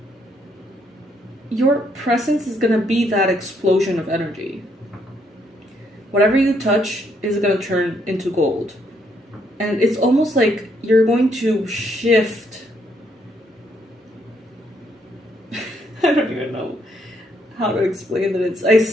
your presence is gonna be that explosion of energy. Whatever you touch is gonna turn into gold. And it's almost like you're going to shift. I don't even know how to explain that. I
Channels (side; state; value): both; normal; correlation 0.72